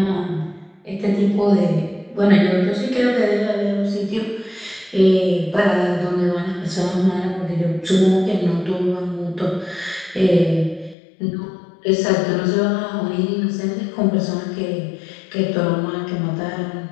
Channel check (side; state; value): right; drops out; at 11.0 s